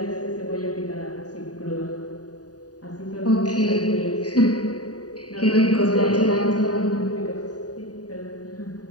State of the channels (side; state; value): right; late; 0.68 ms